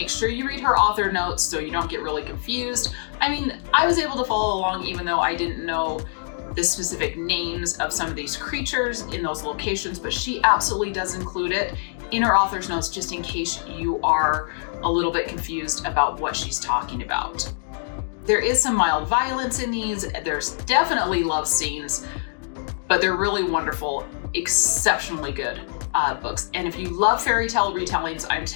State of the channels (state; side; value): silent; right; digital silence